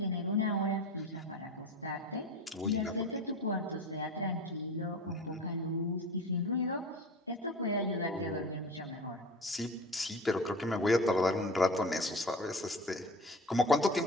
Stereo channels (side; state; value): both; normal; correlation 0.35